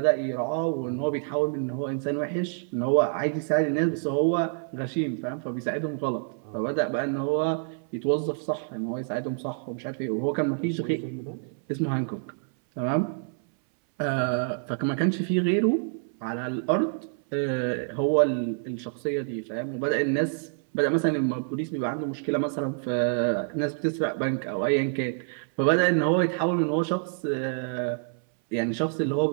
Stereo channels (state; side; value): silent; left; 60 dB below the other